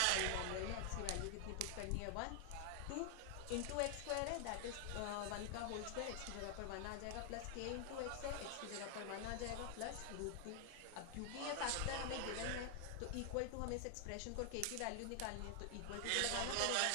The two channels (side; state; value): both; different; correlation 0.00